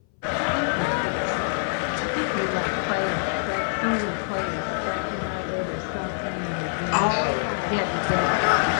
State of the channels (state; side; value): silent; right; 60 dB below the other